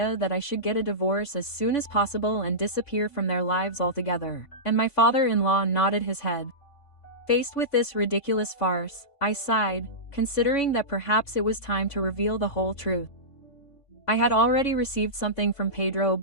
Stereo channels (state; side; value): late; right; 3.5 ms